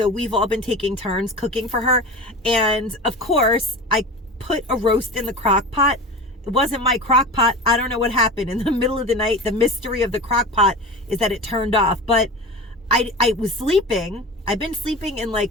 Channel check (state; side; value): normal; both; correlation 0.31